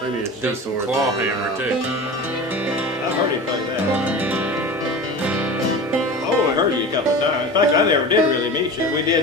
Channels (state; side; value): normal; both; correlation 0.33